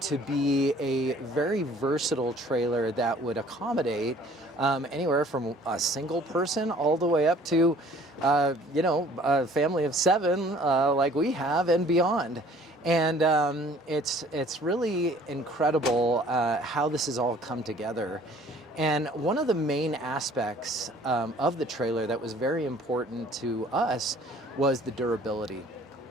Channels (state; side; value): normal; both; correlation 0.54